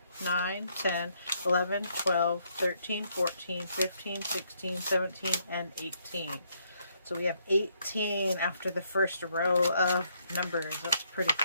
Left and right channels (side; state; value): both; inverted; correlation -0.72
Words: 9, 10, 11, 12, 13, 14, 15, 16, 17, and 18. So we have 18 after the first row of numbers. That's pretty